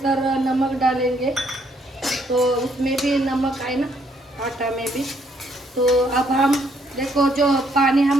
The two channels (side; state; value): both; normal; correlation 0.70